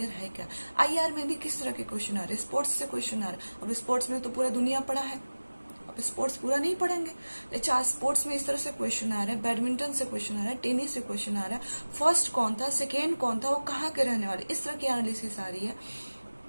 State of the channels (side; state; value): both; inverted; correlation -1.00